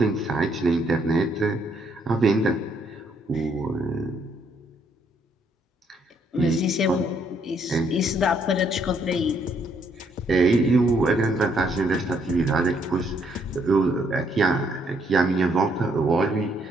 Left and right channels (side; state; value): both; normal; correlation 0.70